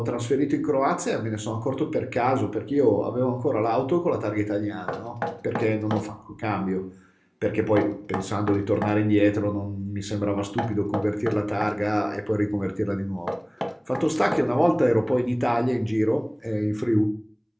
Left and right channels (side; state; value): both; identical; correlation 1.00